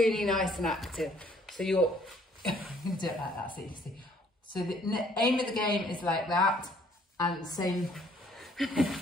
nice and active. So you're do it like that so you can see. So the aim of the game is like that, and the same.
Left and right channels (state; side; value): normal; both; correlation 0.62